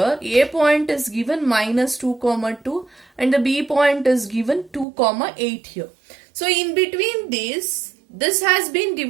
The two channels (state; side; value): drops out; left; at 4.9 s